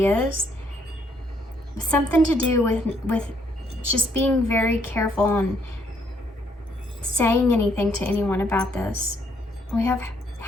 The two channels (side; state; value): both; normal; correlation 0.70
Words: Something to do with just being very careful on saying anything to anyone about this. We have